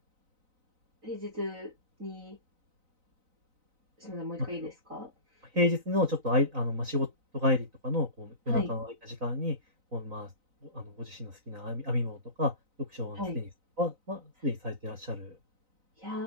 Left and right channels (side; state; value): left; late; 3.9 ms